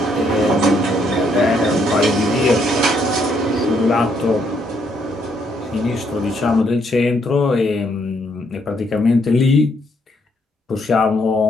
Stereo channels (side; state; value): both; normal; correlation 0.72